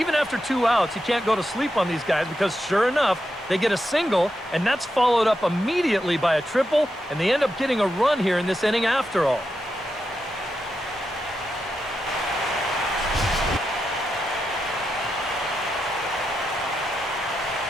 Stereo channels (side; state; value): both; normal; correlation 0.86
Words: after 2 outs, you can't go to sleep on these guys because sure enough, they get a single, and that's followed up immediately by a triple, and they end up getting a run here in this inning after all.